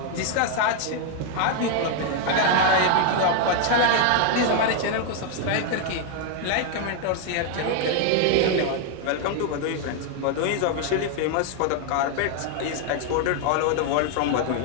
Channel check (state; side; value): different; both; correlation 0.00